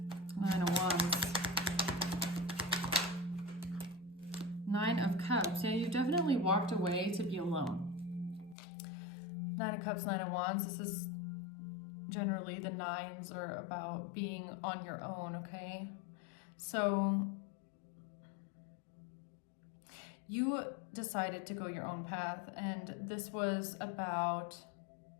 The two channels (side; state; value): right; drops out; at 8.6 s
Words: Nine of Wands. Nine of Cups. Yeah, you definitely walked away to be alone. Nine of Cups, Nine of Wands. This is generally the nines are about being on your own, okay? So you decided to go your own path, and this was about